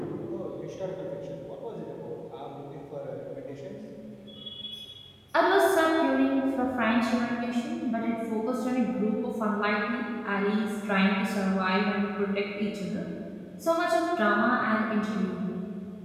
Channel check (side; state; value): both; identical; correlation 1.00